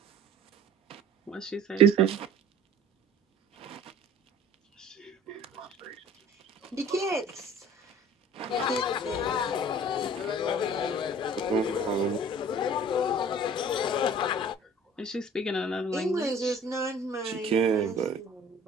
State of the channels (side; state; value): both; normal; correlation 0.48